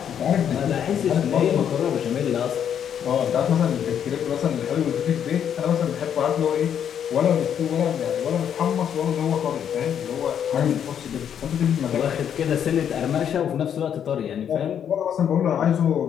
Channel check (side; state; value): right; quieter; 8.8 dB